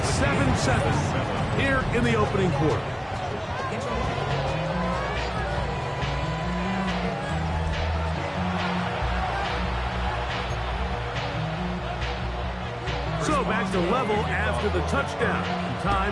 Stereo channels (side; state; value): both; identical; correlation 1.00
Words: 7-7 here in the opening quarter. So back to level after the touchdown.